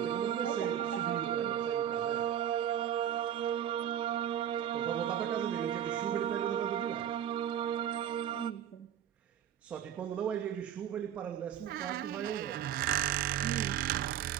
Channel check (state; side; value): quieter; left; 10.2 dB